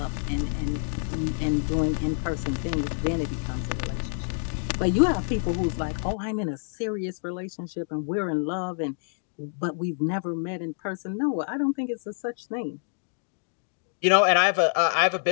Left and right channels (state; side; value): silent; right; digital silence